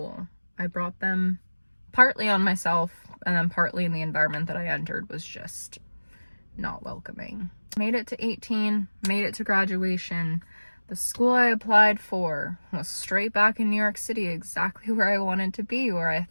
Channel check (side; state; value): both; inverted; correlation -1.00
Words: I brought them partly on myself, and then partly in the environment that I entered was just not welcoming. Made it to 18, made it to graduation. The school I applied for was straight back in New York City, exactly where I wanted to be, where I